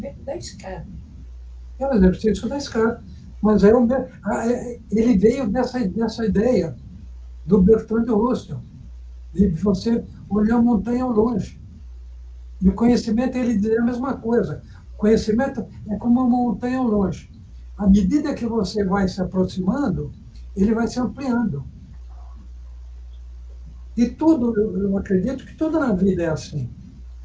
da escada. É o exercício da escada. Mas ele veio dessa ideia do Bertrand Russell, de você olhar a montanha ao longe. E o conhecimento, ele diz a mesma coisa. O conhecimento é como uma montanha ao longe. À medida que você vai se aproximando, ele vai se ampliando. E tudo, eu acredito que tudo na vida é assim.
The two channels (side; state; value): both; identical; correlation 1.00